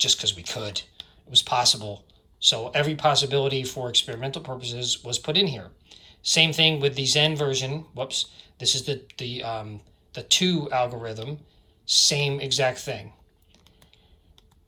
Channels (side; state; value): both; identical; correlation 1.00